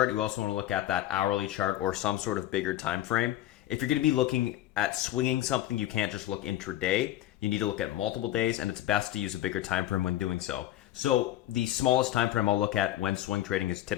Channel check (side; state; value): right; quieter; 14.0 dB